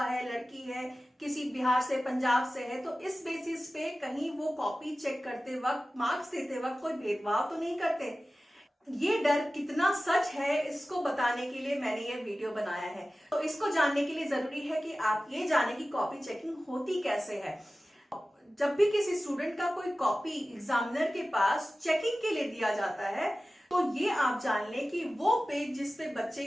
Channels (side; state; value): both; normal; correlation 0.96